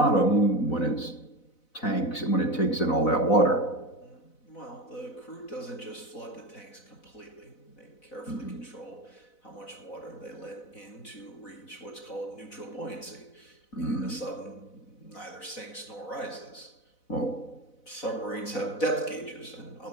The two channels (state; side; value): late; right; 4.0 ms